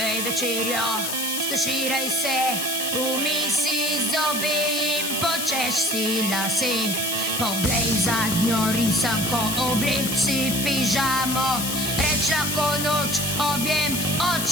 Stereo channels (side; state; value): left; noise; hiss, 2 dB below the sound